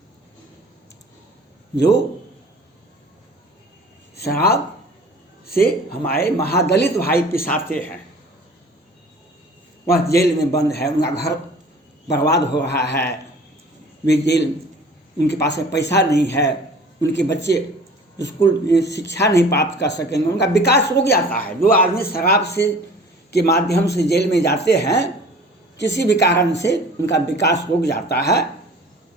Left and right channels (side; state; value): both; normal; correlation 0.46